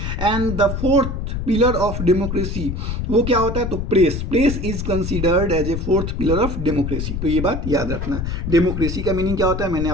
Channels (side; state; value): left; noise; rumble, 4 dB below the sound